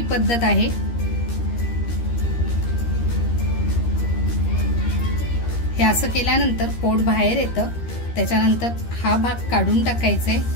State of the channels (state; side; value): late; right; 13 ms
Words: पद्धत आहे. हे असं केल्यानंतर पोट बाहेर येतं. त्याच्यानंतर हा भाग काढून टाकायचे,